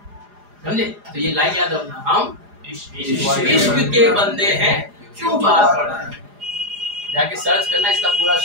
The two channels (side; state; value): left; late; 4.9 ms